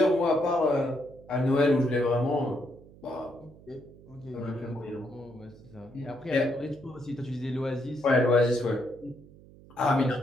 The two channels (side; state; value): right; noise; hum, 22 dB below the sound